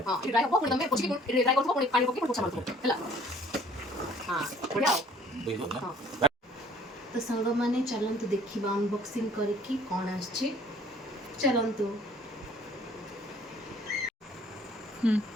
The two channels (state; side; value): normal; both; correlation 0.56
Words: हां इट ड्राई हो पुणी तमे पोछि के ड्राई करथो पुणी पानी पके पोछा मारथो हला हां बढ़िया बुझो ना तो संग माने चलंतु देखिबा अनबॉक्सिंग करके कोन आछी चलंतु